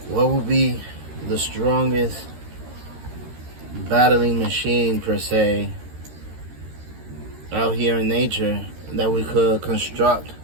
what would be the strongest battling machine, per se, out here in nature that we could construct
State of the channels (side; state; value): left; late; 13 ms